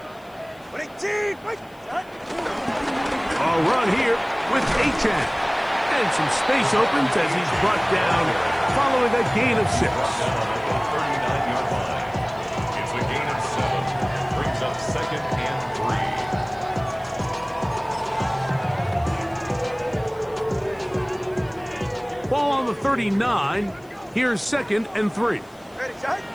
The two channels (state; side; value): noise; left; hiss, 30 dB below the sound